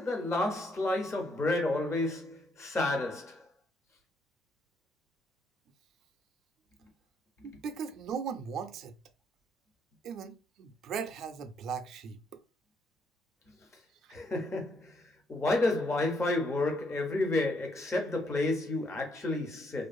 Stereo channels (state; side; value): normal; both; correlation 0.73